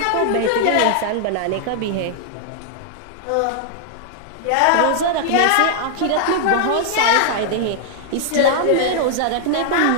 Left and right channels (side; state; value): both; different; correlation -0.01